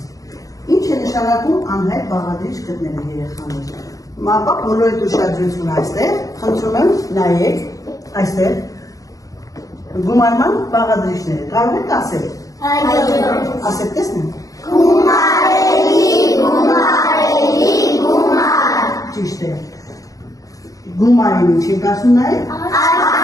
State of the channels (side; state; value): right; late; 0.17 ms